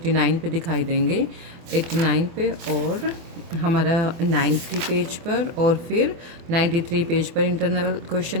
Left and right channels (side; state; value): left; late; 24 ms